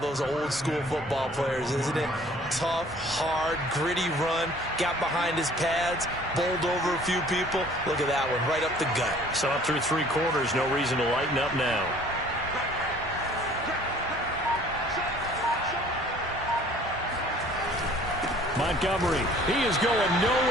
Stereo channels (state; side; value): normal; both; correlation 0.53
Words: old school football players, isn't it? Tough, hard, gritty run. Got behind his pads, bowled over a few people. Look at that one, right up the gut. Saw through 3 quarters. No reason to lighten up now. Montgomery, he is going